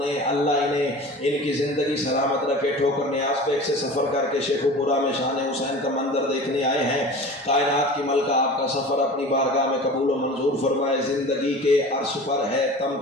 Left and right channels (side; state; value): both; normal; correlation 0.37